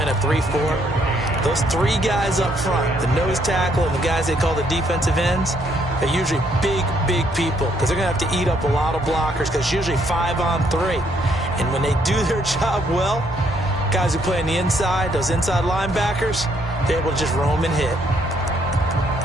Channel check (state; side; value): normal; both; correlation 0.70